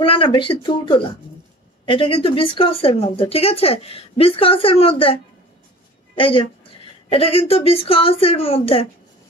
না বেশি তুলতুলা, এটা কিন্তু বিস্কসের মধ্যে, ঠিক আছে বিস্কসের মধ্যে। এই যে এটা কিন্তু বিস্কসের মধ্যে,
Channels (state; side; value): normal; both; correlation 0.43